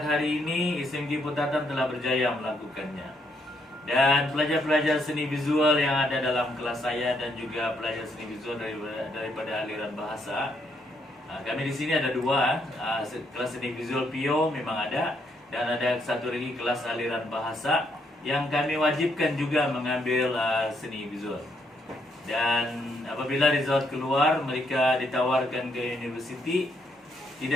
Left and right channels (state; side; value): normal; both; correlation 0.74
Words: hari ini SMK Putatan telah berjaya melakukannya. Dan pelajar-pelajar seni visual yang ada dalam kelas saya dan juga pelajar seni visual daripada aliran bahasa, kami di sini ada 2, kelas seni visual PIO memang ada, dan ada satu lagi kelas aliran bahasa yang kami wajibkan juga mengambil seni visual. Dan apabila result keluar, mereka ditawarkan ke universiti,